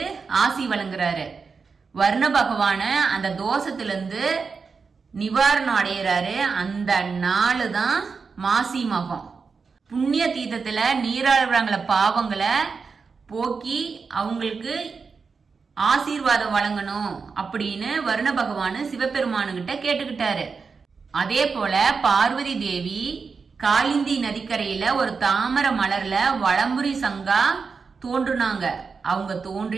ஆசி வழங்குறாரு. வர்ண பகவான அந்த தோஷத்துல இருந்து நிவாரணம் அடைகிறாரு. அந்த நாளு தான் மாசி மகம். புண்ணிய தீர்த்தத்துல நீராடுறாங்கள பாவங்களை போக்கி அவங்களுக்கு ஆசீர்வாதம் வழங்கணும் அப்படின்னு வருண பகவான் சிவபெருமானுகிட்ட கேட்டுக்கிட்டாரு. அதே போல பார்வதி தேவி காலிந்தி நதிக்கரையில ஒரு தாமரை மலர்ல வலம்புரி சங்கா தோன்றுனாங்க. அவங்க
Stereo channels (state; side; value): quieter; left; 5.1 dB